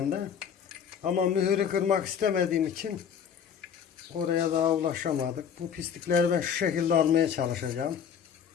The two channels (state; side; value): quieter; right; 7.7 dB